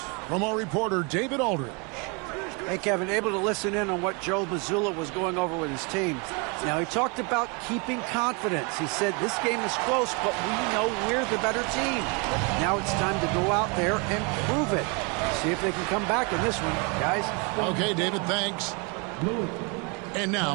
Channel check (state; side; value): quieter; left; 31.5 dB